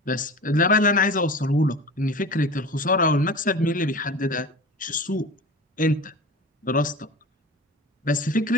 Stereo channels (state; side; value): normal; both; correlation 0.34